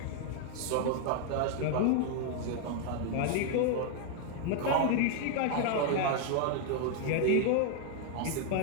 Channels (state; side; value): different; both; correlation 0.00